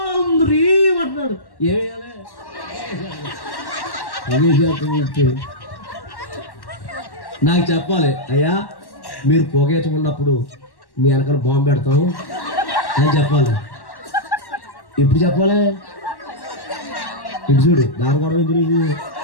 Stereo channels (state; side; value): late; right; 1.1 ms